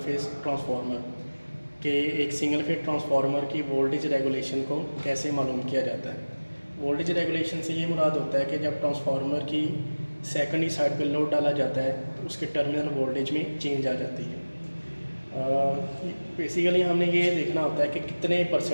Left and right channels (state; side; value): inverted; both; correlation -1.00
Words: phase transformer कि एक single phase transformer की voltage regulation को कैसे मालूम किया जाता है। वोल्टेज रेगुलेशन से ये मुराद होता है कि जब ट्रांसफार्मर की सेकेंडरी साइड पर लोड डाला जाता है तो उसके टर्मिनल वोल्टेज में चेंज आ जाती है। बेसिकली हमने ये देखना होता है कि कितने